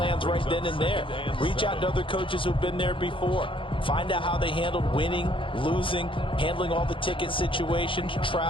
right then and there. Reach out to other coaches who've been there before. Find out how they handled winning, losing, handling all the ticket situations,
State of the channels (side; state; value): right; late; 0.25 ms